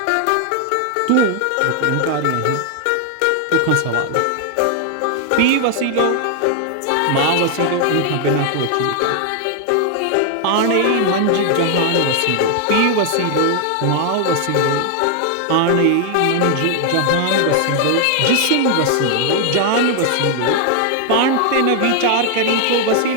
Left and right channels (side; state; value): both; different; correlation 0.00